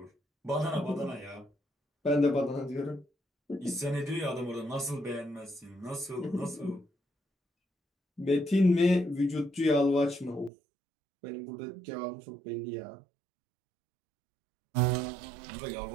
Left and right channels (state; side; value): drops out; left; at 10.5 s